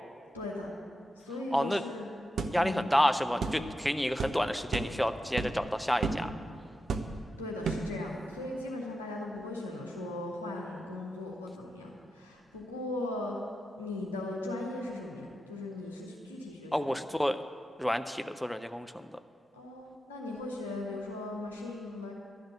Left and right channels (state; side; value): normal; both; correlation 0.88